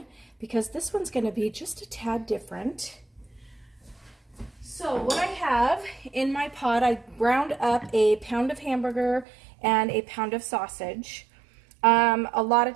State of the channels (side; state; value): left; drops out; at 9.2 s